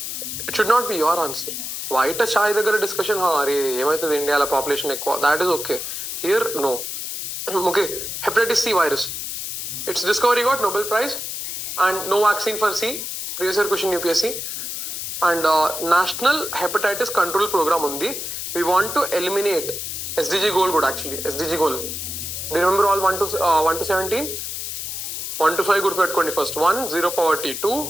It should not be your answer. White చాయ్ దగ్గర discussion, అరే ఏమవుతుంది ఇండియాలో population ఎక్కువ, that is okay. Here no. Okay, hepatitis C virus, its discovery got Nobel prize and no vaccine for C, previous year question UPSC. And national hepatitis control programme ఉంది. We want to eliminate SDG goal కూడా, actually SDG goal. Do you remember all 1 to 17? 1 to 5 గుర్తుపెట్టుకోండి. First 1, 0 poverty. 2,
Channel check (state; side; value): noise; left; hiss, 5 dB below the sound